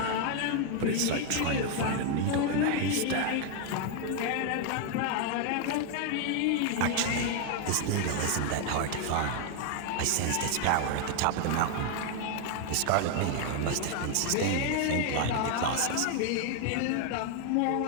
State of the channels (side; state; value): both; different; correlation 0.00